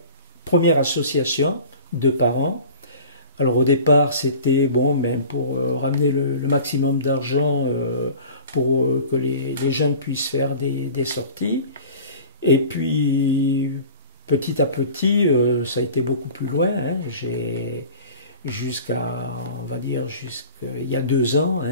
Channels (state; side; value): inverted; both; correlation -0.41